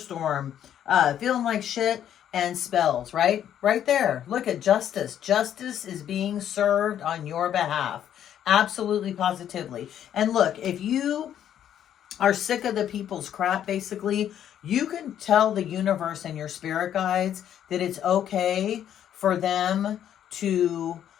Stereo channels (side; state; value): right; quieter; 10.2 dB